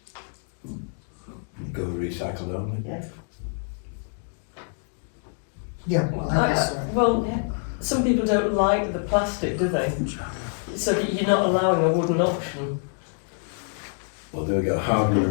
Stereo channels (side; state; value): right; silent; 61 dB below the other